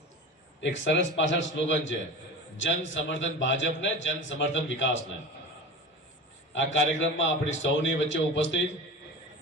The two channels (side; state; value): both; normal; correlation 0.32